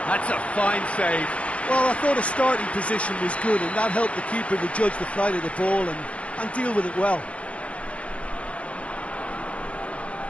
That's a fine save. Well, I thought his starting position was good, and that helped the keeper to judge the flight of the ball and deal with it well.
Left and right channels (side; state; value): right; late; 0.063 ms